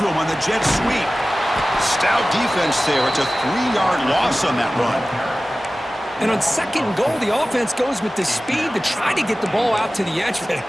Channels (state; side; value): normal; both; correlation 0.97